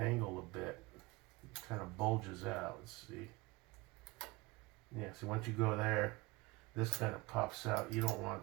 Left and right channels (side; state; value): left; quieter; 22.7 dB